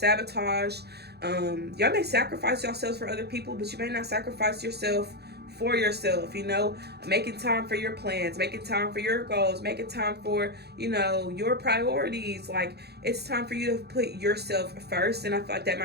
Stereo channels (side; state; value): left; late; 0.48 ms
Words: Y'all may sacrifice yourselves for other people, but you may not sacrifice yourself for yourself. You know, making time for your plans, making time for your goals, making time for, you know, your priorities. Like, it's time for you to put yourself first. And I feel like that